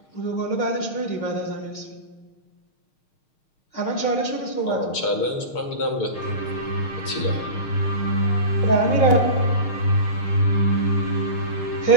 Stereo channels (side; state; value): right; late; 6.5 ms